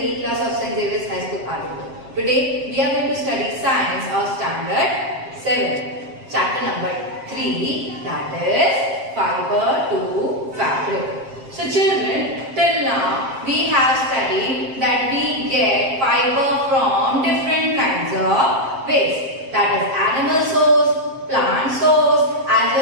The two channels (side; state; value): left; late; 7.5 ms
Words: E-class of St. Xavier's High School, Aluva. Today we are going to study Science of Standard 7, chapter number 3, that is Fiber to Fabric. So children, till now we have studied that we get fiber from different kinds of waste. That is animal source, plant source as